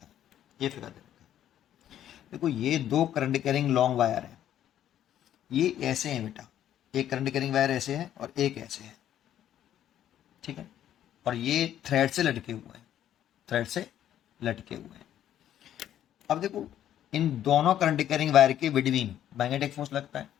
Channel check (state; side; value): quieter; right; 11.2 dB